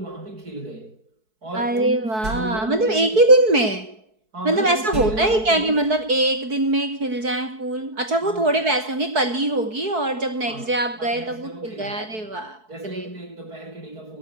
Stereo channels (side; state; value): left; late; 4.6 ms